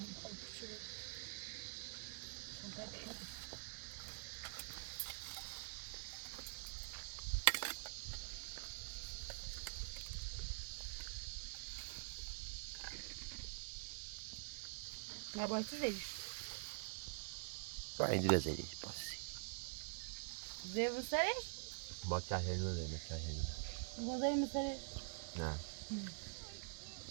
نباید زیش با این دیگه زیش باسی زی بسرش با که هنو دیمه که هنو با زی مسرش نه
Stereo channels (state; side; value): silent; left; digital silence